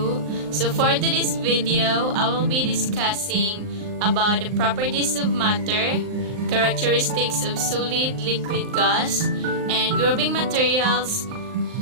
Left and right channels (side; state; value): left; late; 39 ms